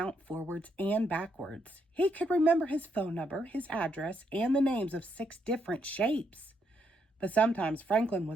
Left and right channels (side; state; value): both; normal; correlation 0.76